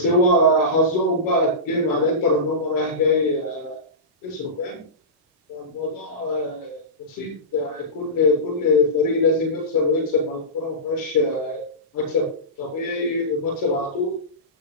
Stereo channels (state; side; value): normal; both; correlation -0.19